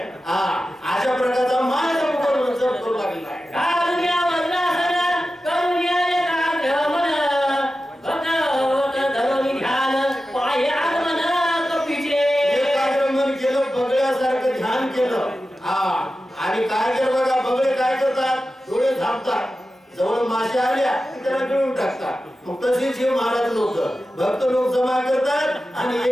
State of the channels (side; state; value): both; normal; correlation 0.93